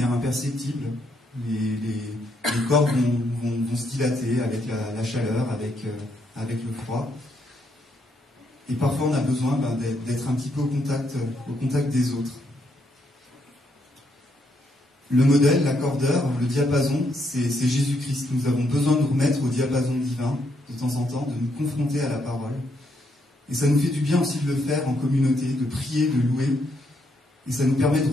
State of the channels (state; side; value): normal; both; correlation 0.76